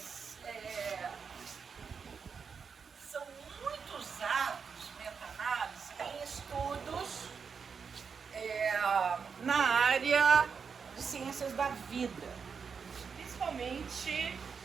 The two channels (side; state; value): left; quieter; 5.9 dB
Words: são muito usados, meta-análise, em estudos na área de ciências da vida, principalmente,